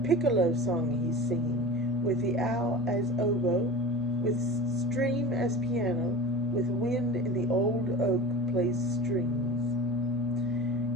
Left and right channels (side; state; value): both; normal; correlation 0.34